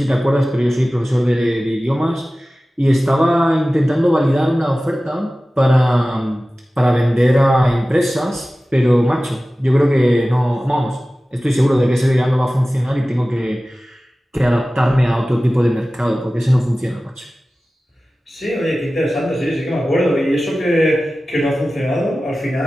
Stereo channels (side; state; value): both; normal; correlation 0.96